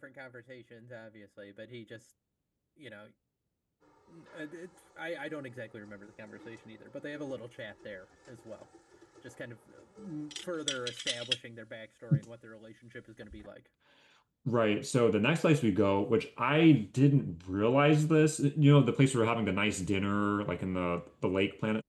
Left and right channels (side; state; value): both; identical; correlation 1.00